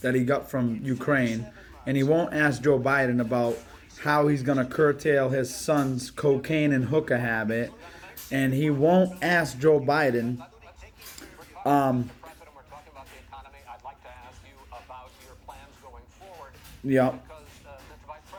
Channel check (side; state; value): both; identical; correlation 1.00